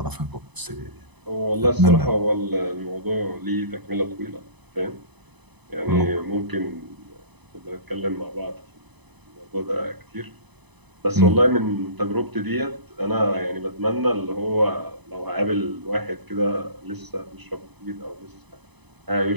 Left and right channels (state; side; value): late; left; 1.0 ms